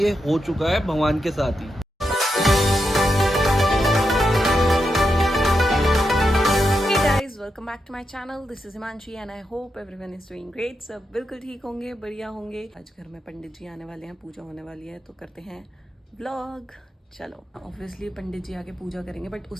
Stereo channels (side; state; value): both; normal; correlation 0.86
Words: हो चुका है भगवान के साथ ही। Welcome back to my channel, this is Himanshi and I hope everyone is doing great. सब बिल्कुल ठीक होंगे, बढ़िया होंगे। आज घर में पंडित जी आने वाले हैं, पूजा होने वाली है, तो करते हैं व्लॉग। चलो, ऑब्वियसली पंडित जी आके पूजा करेंगे, बट